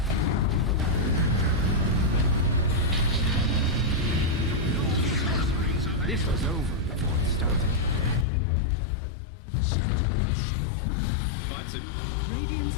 This was over before it started. Bites it. Radiant's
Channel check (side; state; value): right; drops out; at 8.2 s